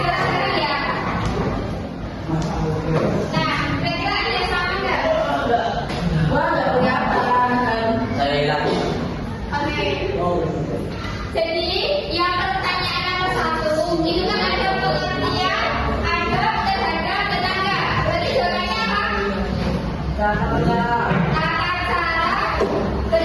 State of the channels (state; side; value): identical; both; correlation 1.00